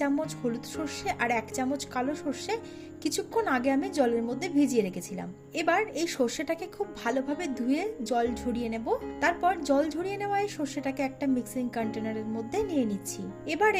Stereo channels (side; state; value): both; identical; correlation 1.00